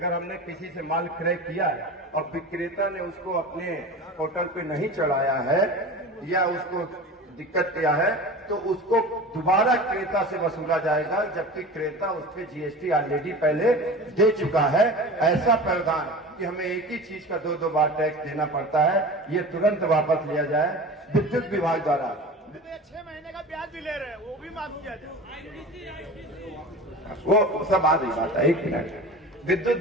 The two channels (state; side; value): normal; both; correlation 0.34